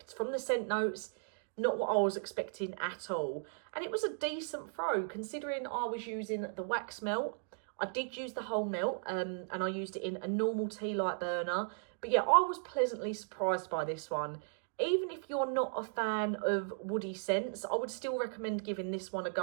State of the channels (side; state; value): left; silent; digital silence